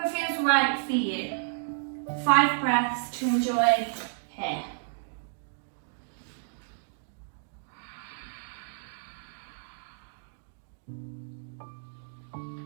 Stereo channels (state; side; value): silent; left; digital silence